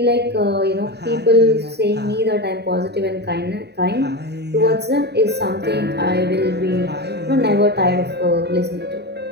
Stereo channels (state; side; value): late; left; 0.48 ms